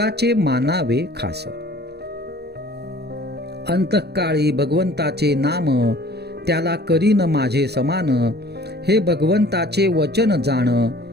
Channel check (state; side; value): late; left; 0.47 ms